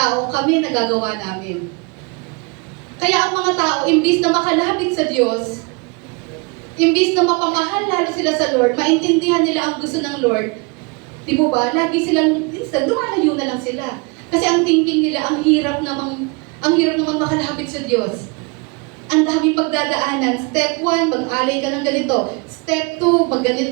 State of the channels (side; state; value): left; quieter; 30.2 dB